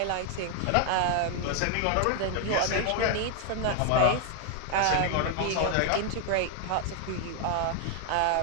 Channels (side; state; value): both; different; correlation 0.00